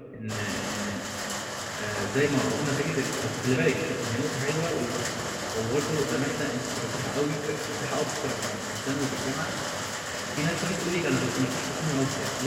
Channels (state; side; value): identical; both; correlation 1.00